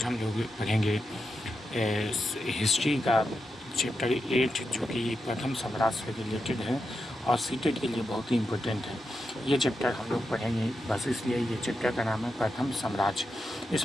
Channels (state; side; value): normal; both; correlation 0.87